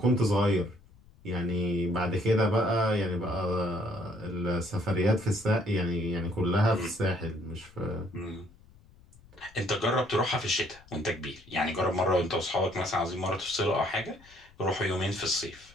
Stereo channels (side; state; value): left; noise; rumble, 26 dB below the sound